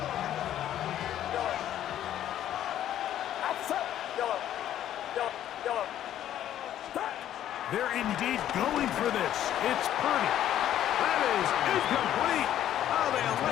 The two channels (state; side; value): quieter; right; 11.6 dB